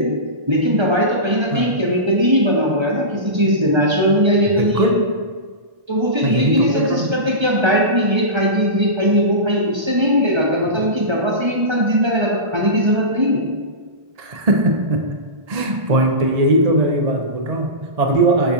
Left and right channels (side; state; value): left; late; 1.3 ms